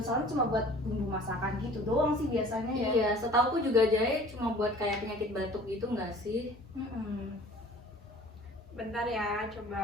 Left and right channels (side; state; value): both; normal; correlation 0.48